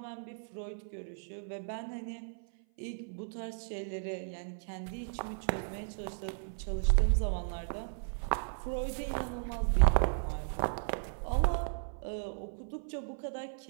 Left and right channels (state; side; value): silent; left; 54 dB below the other